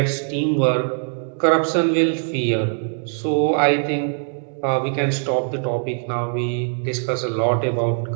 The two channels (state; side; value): silent; left; 65 dB below the other